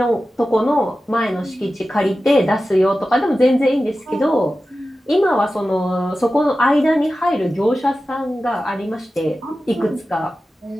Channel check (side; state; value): both; normal; correlation 0.94